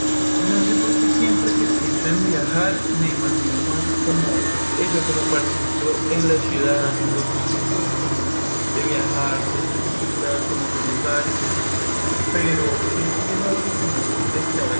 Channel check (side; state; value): both; inverted; correlation -1.00